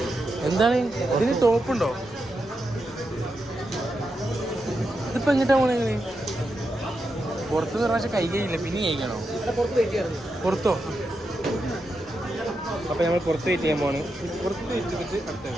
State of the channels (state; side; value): normal; both; correlation 0.86